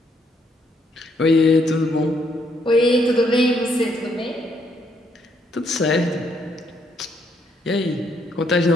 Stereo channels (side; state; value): both; normal; correlation 0.72